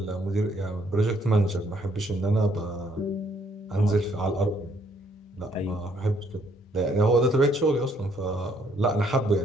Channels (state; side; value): normal; both; correlation 0.68